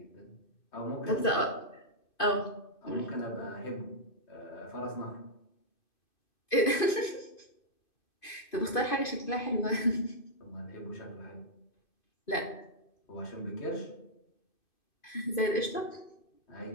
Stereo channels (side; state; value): right; late; 2.5 ms